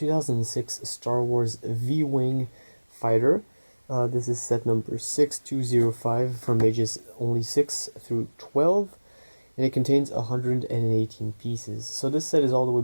Star Wars V-Wing fighter. This is set number 6205 from ages only 6 through 12, and it contains 118 pieces. So this set is all the way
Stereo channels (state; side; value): inverted; both; correlation -1.00